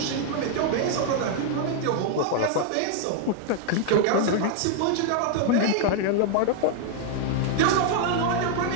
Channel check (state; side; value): different; both; correlation 0.00